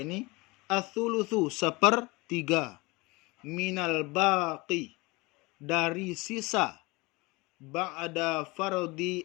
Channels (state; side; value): quieter; right; 24.4 dB